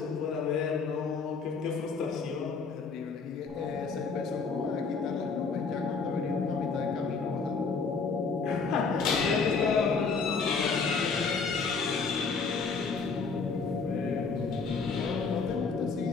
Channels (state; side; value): quieter; right; 4.9 dB